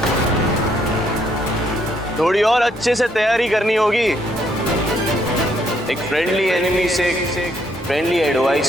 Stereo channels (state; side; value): normal; both; correlation 0.71